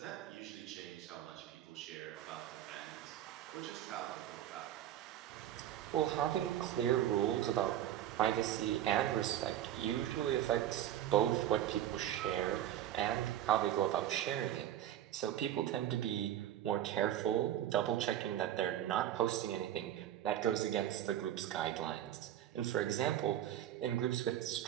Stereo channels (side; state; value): left; quieter; 11.8 dB